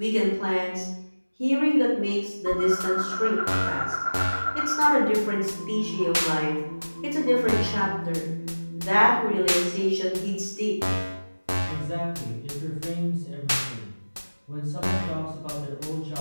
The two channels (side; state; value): both; inverted; correlation -1.00